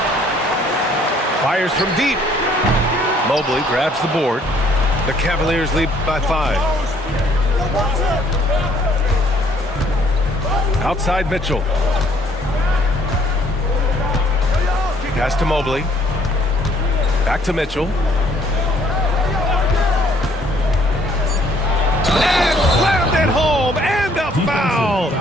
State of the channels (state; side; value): normal; both; correlation 0.62